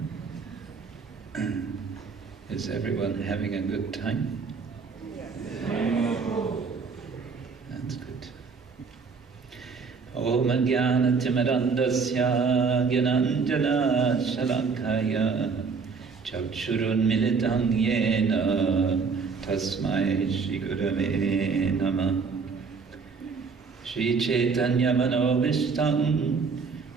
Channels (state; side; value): quieter; left; 5.1 dB